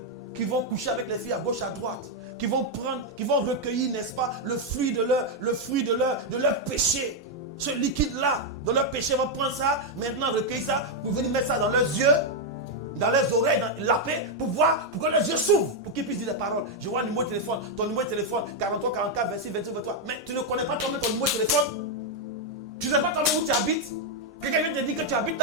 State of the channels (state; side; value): normal; both; correlation 0.01